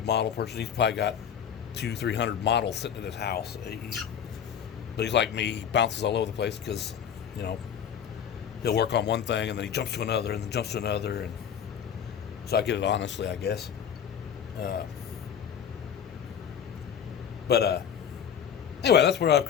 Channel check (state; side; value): quieter; right; 8.4 dB